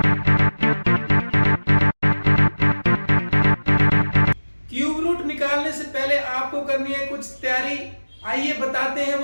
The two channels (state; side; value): inverted; both; correlation -1.00